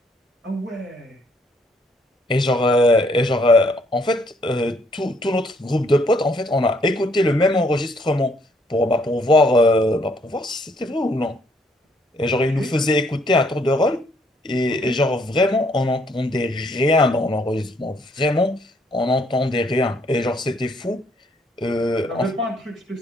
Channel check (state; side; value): normal; both; correlation 0.68